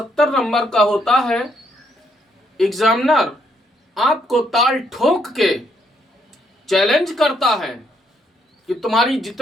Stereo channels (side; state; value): both; normal; correlation 0.73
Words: नंबर का होता है। एग्जामिनर आपको ताल ठोक के चैलेंज करता है कि तुम्हारी